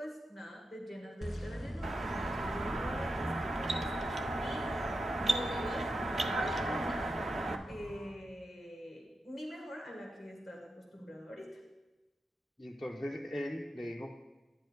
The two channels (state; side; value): normal; both; correlation 0.88